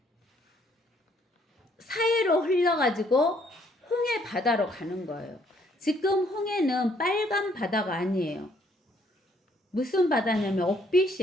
사해로 흘러가지고 홍해 바다로 가는 거예요. 지금 홍해는 빨간 바다가 아니에요. 무슨 바다냐면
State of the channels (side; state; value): both; normal; correlation 0.66